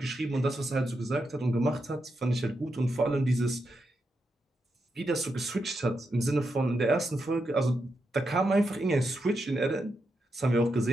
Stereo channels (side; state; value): both; normal; correlation 0.85